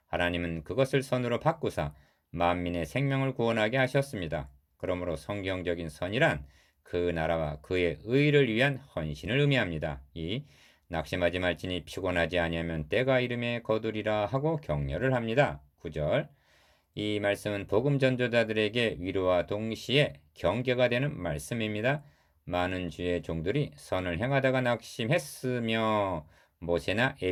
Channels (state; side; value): identical; both; correlation 1.00